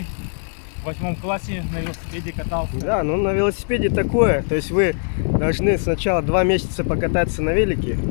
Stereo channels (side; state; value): right; silent; 65 dB below the other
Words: в 8 классе на велосипеде катался. Да, ну на велосипеде такое. То есть вы должны сначала 2 месяца покататься на велике.